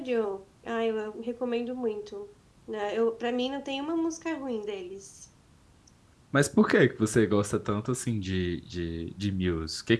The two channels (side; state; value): both; identical; correlation 1.00